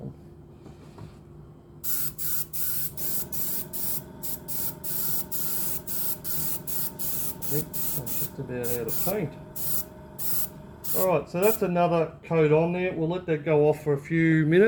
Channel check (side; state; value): both; identical; correlation 1.00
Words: I think I'm just about out of paint. Alright, so that's another coat on there. We'll let that go off for a few